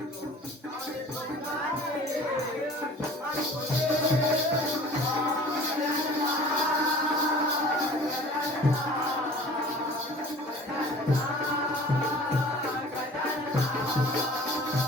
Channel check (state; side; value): normal; both; correlation 0.46